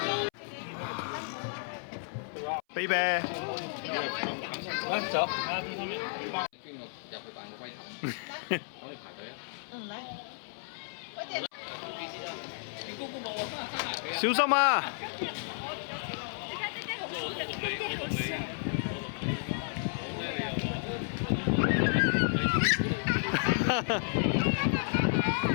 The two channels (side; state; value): right; silent; 56 dB below the other